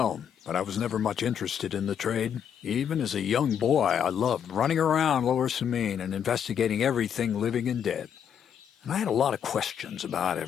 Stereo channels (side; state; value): right; quieter; 8.4 dB